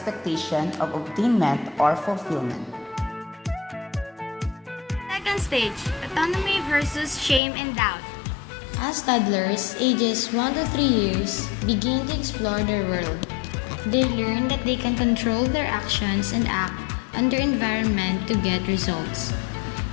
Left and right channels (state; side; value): drops out; right; at 7.4 s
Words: of obtainment or fulfillment. Second stage, autonomy versus shame and doubt. As toddlers, ages 1 to 3 years, begin to explore their world. They learn that they can control their actions and act on their environment to get results.